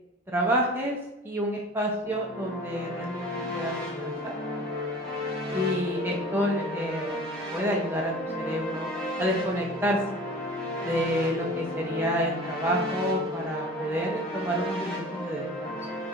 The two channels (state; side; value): normal; both; correlation 0.42